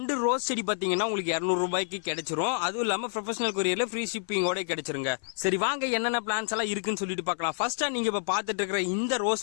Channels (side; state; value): right; silent; 59 dB below the other